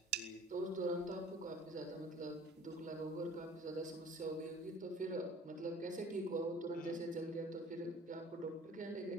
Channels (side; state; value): both; normal; correlation 0.48